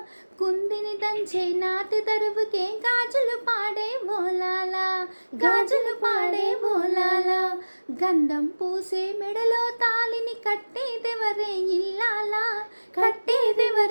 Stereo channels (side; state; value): both; inverted; correlation -1.00